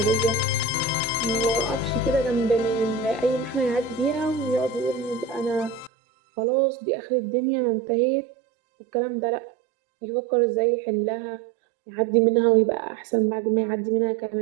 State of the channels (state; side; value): drops out; left; at 5.9 s